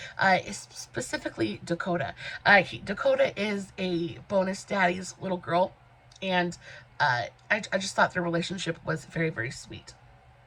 Specifically Dakota. Dakota is a bonus daddy's little girl, and I just thought their relationship was very, very sweet.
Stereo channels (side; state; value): both; identical; correlation 1.00